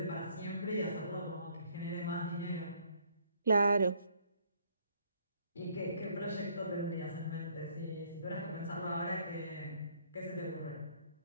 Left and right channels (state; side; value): inverted; both; correlation -0.64